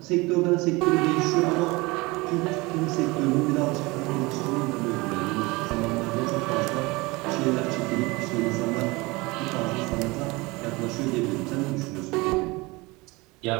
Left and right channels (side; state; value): left; quieter; 23.6 dB